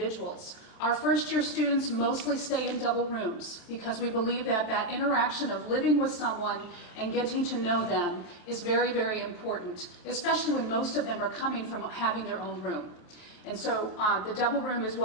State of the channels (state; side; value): late; right; 27 ms